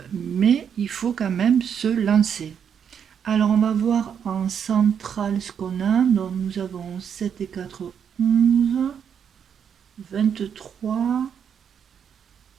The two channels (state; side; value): quieter; left; 7.8 dB